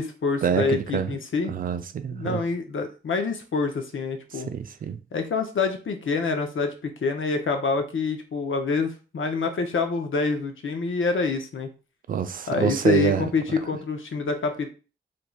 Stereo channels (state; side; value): normal; both; correlation 0.38